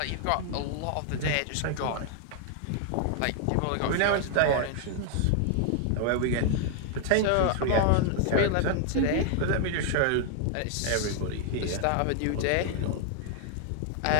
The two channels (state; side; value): different; both; correlation 0.00